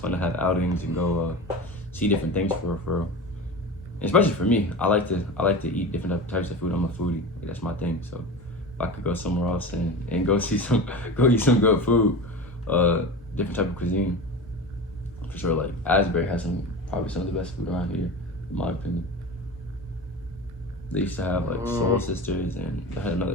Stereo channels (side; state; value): both; normal; correlation 0.29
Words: to have outings and go see different things for especially for me. I like to eat different types of food. I'm a foodie. That's my thing. So if I could go somewhere else and go eat some good food, different type of cuisine, for sure. Like Asbury has probably some of the best food around here, in my opinion. They used to have like Soul Sisters, and they had another